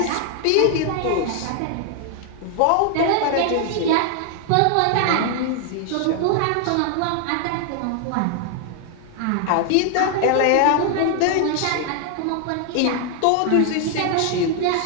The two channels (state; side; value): different; both; correlation 0.00